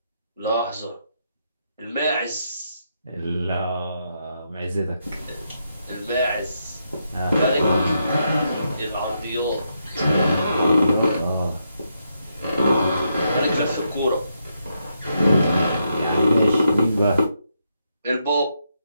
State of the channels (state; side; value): inverted; both; correlation -0.80